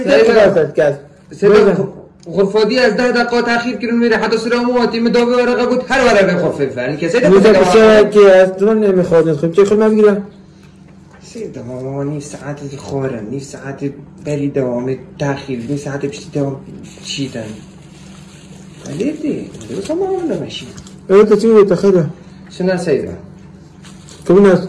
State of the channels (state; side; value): identical; both; correlation 1.00